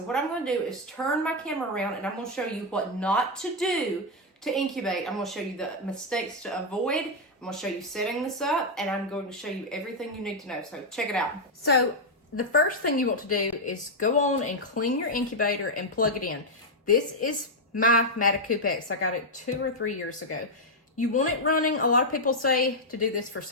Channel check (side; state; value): both; normal; correlation 0.00